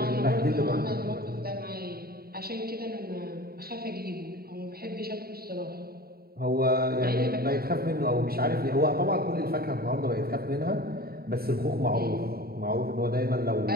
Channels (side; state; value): left; late; 0.45 ms